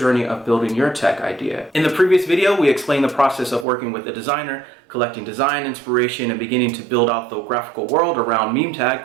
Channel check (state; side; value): drops out; left; at 3.7 s